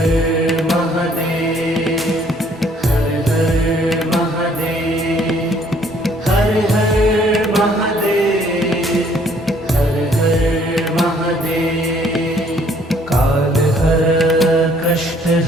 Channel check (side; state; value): both; normal; correlation 0.62